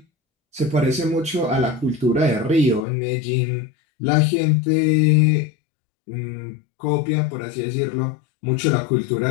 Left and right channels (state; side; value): drops out; right; at 2.9 s